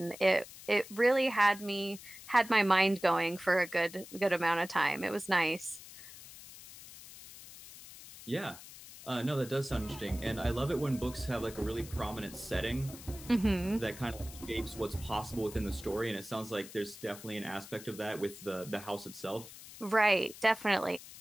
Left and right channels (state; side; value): noise; left; hiss, 16 dB below the sound